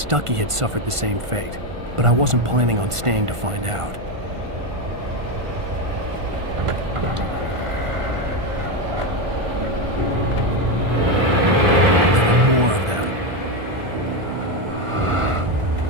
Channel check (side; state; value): left; late; 1.5 ms